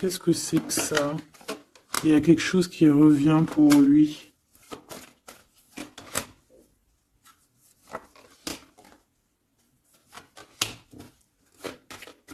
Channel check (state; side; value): identical; both; correlation 1.00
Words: que c'est que ça? Il y a quelque chose qui revient pour lui.